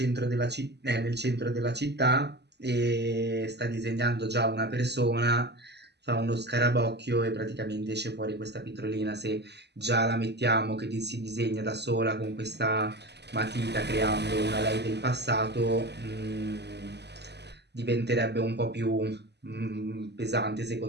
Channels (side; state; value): left; late; 0.49 ms